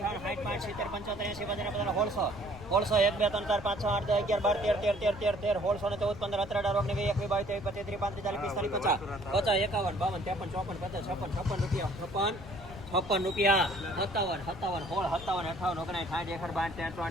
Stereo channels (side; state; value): left; noise; rumble, 14 dB below the sound